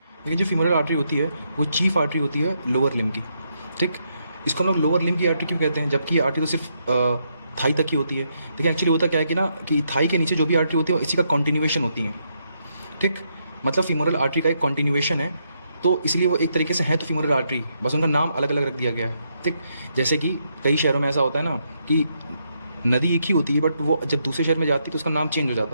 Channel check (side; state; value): both; inverted; correlation -0.78